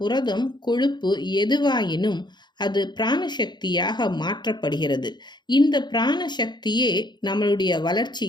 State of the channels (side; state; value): right; late; 0.21 ms